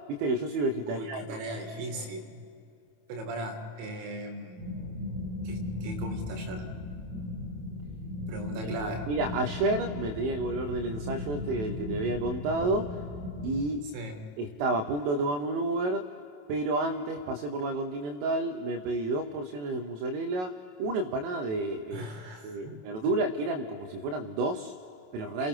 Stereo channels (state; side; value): late; left; 27 ms